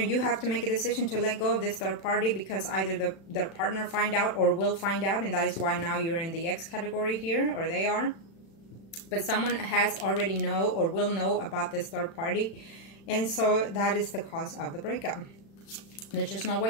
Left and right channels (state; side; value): late; right; 36 ms